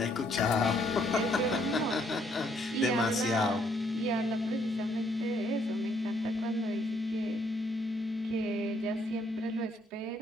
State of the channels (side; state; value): both; normal; correlation 0.69